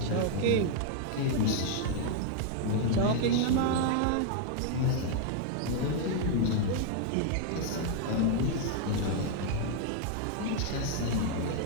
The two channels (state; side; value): different; both; correlation 0.00